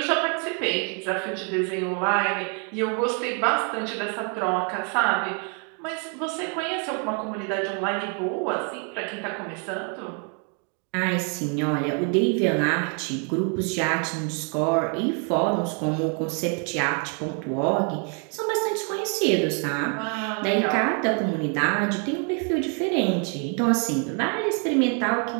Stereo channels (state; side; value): quieter; left; 39.1 dB